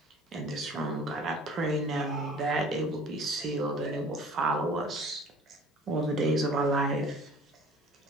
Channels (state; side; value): normal; both; correlation 0.48